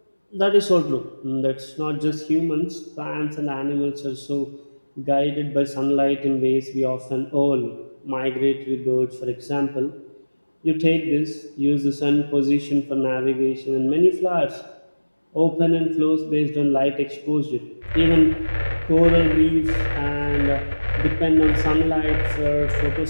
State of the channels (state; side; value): inverted; both; correlation -1.00